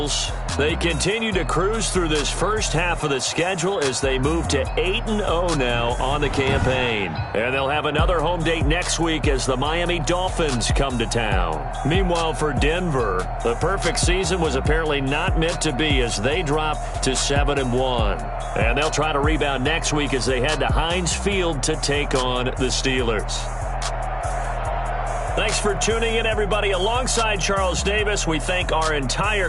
they continue to cruise through this first half of the schedule as they move to 8-0 now on the campaign. And they'll have another home date next week as the Miami Dolphins come to town. Meanwhile, for Denver, the perfect season was apparently not meant to be as they drop to 7-1. And they'll try to rebound next week as they head to Heinz Field to take on the Steelers. Thanks for tuning in, everybody. Alongside Charles Davis, we thank our entire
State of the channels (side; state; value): both; identical; correlation 1.00